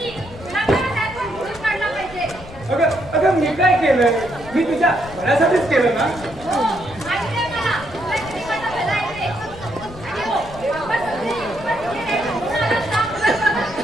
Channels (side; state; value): left; noise; rumble, 16 dB below the sound